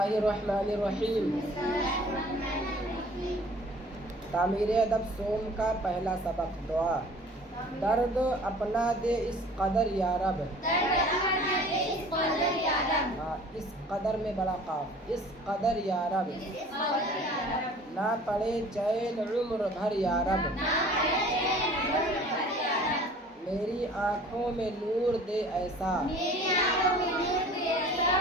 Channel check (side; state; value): both; normal; correlation 0.48